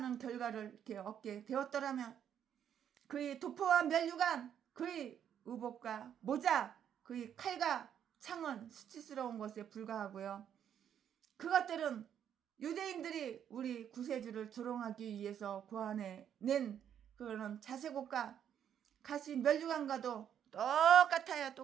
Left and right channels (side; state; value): left; quieter; 9.2 dB